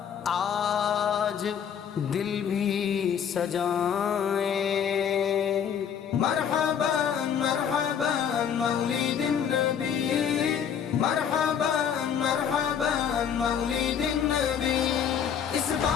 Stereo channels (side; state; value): right; quieter; 8.1 dB